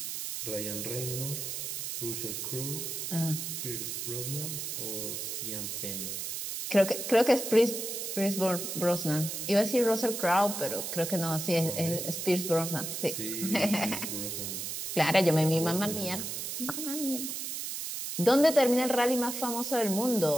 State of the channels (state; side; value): noise; right; hiss, 5 dB below the sound